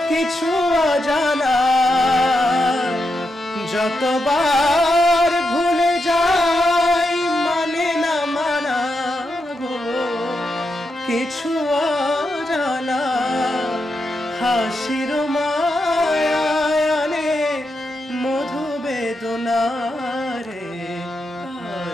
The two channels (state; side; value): normal; both; correlation 0.85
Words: কিছু অজানা, যতবার ভুলে যাই মানে না মানা গো, কিছু অজানা হাসির মায়ানে মধু বেদনা রে,